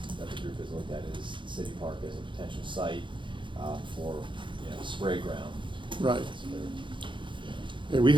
the group has looked at is the city park as a potential site, for, spray ground. Right. Yeah, we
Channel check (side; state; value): left; late; 0.23 ms